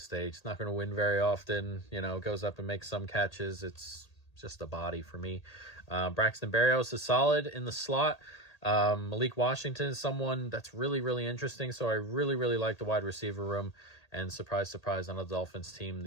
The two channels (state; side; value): late; right; 1.8 ms